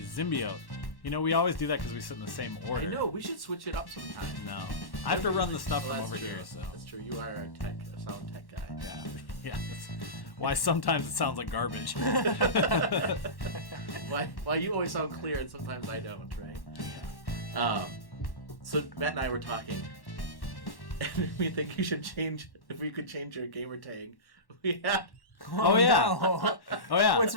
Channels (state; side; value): late; right; 1.1 ms